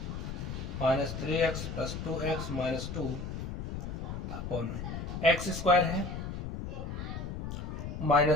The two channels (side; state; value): left; noise; rumble, 6 dB below the sound